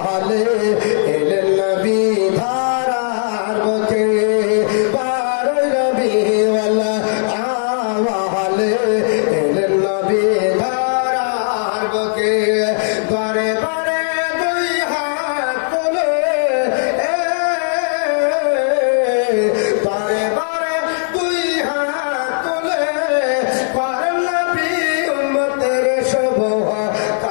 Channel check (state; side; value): silent; right; digital silence